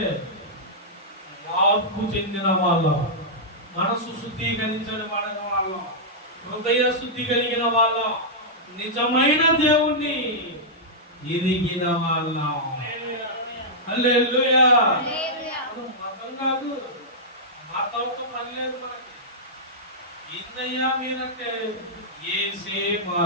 మార్పు చెందిన వాళ్ళం, మనసు శుద్ధీకరించిన వాళ్ళం, హృదయ శుద్ధి కలిగిన వాళ్ళం, నిజమైన దేవుణ్ణి ఎరిగిన వాళ్ళం. హల్లెలూయా. మతం కాదు, మతంతో పని లేదు మనకి. ఏందయ్యా మీరంటే యేసే మా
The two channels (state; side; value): normal; both; correlation -0.11